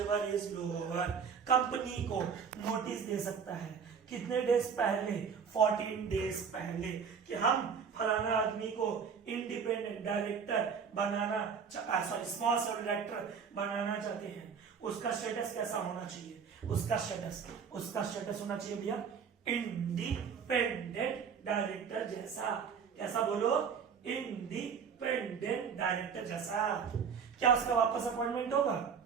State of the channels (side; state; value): left; quieter; 6.5 dB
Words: lower कंपनी को नोटिस दे सकता है। कितने डेज पहले? 14 डेज पहले, कि हम फलाना आदमी को इंडिपेंडेंट डायरेक्टर बनाना, स्मॉल शेयर डायरेक्टर बनाना चाहते हैं। उसका स्टेटस कैसा होना चाहिए? उसका स्टेटस होना चाहिए भैया इंडिपेंडेंट डायरेक्टर जैसा। कैसा बोलो? इंडिपेंडेंट डायरेक्टर जैसा। क्या उसका वापस अपॉइंटमेंट होगा?